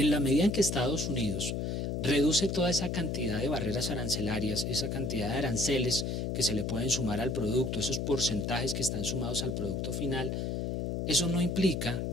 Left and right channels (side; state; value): left; noise; hum, 1 dB below the sound